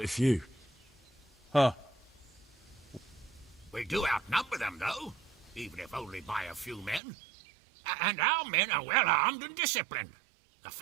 a few. Huh. We do outnumber them, though, even if only by a few men. And our men are well armed and disciplined. The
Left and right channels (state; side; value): drops out; left; at 7.0 s